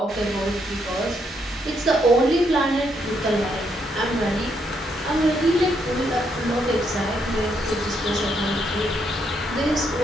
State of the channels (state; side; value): normal; both; correlation 0.76